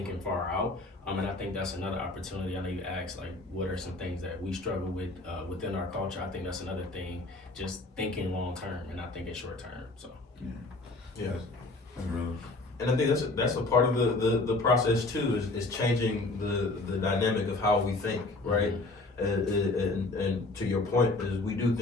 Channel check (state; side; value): quieter; right; 3.1 dB